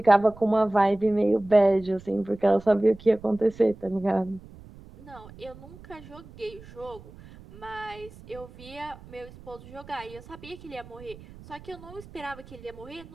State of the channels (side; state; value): right; noise; rumble, 19 dB below the sound